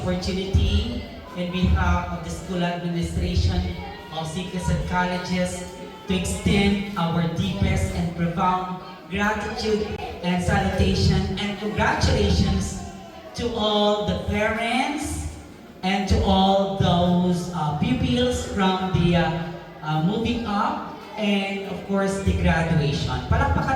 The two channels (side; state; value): both; identical; correlation 1.00